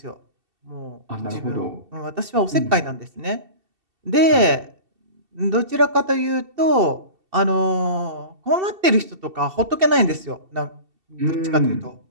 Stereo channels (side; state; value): left; late; 2.7 ms